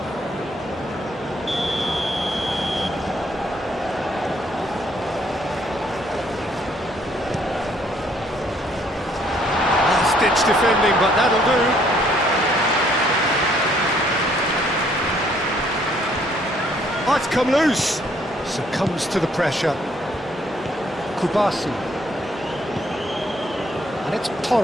Defending, but that'll do. Oh, it's come loose. Succumbs to the pressure. Kubasi. And it's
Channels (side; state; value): both; normal; correlation 0.66